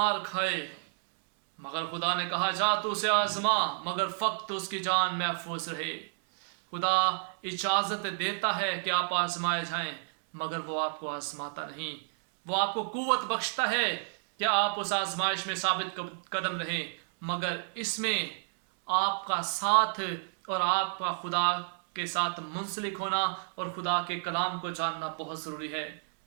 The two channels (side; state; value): left; silent; 57 dB below the other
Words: खाए, मगर खुदा ने कहा, जा तू उसे आजमा, मगर फक्त उसकी जान महफूज रहे। खुदा इजाज़त देता है कि आप आजमाए जाएं, मगर वो आपको आजमाता नहीं। वो आपको कुव्वत बख्शता है कि आप उस आजमाइश में साबित कदम रहें, मगर इसमें आपका साथ और आपका खुदा के साथ मुंसलिक होना और खुदा के कलाम को जानना बहुत ज़रूरी है।